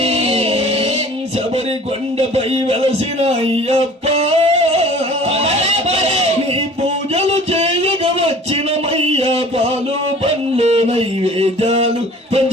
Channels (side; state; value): both; normal; correlation 0.47